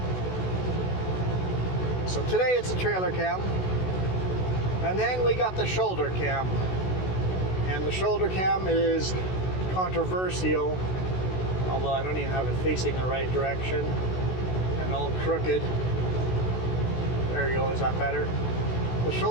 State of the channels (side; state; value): right; late; 16 ms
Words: So today it's a trailer cam. And then we got the shoulder cam. And the shoulder cam is controversial, although I don't even have it facing the right direction and all crooked. There you go, is that better? The